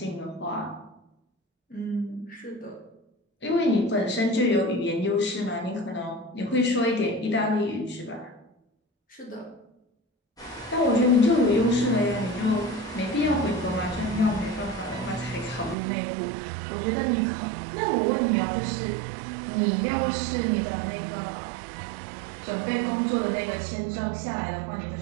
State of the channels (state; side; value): drops out; left; at 15.8 s